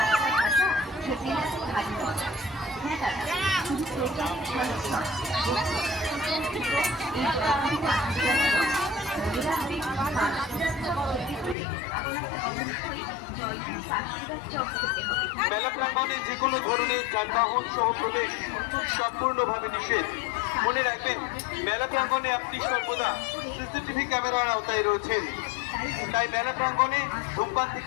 খেতে ভালো মজা। হ্যাঁ দাদা শুধু প্রচার ভালো নয় মেলা প্রাঙ্গণে যে কোনো ধরনের যানবাহন সহ প্রবেশ সম্পূর্ণভাবে নিষেধ। মনে রাখবেন, মেলা প্রাঙ্গণে আপনি সর্বদা সিসিটিভি ক্যামেরার আওতায় রয়েছেন, তাই মেলা প্রাঙ্গণে ধূমপান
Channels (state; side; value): drops out; right; at 11.6 s